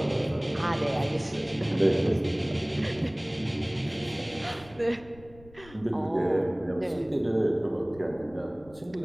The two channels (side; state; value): left; noise; rumble, 23 dB below the sound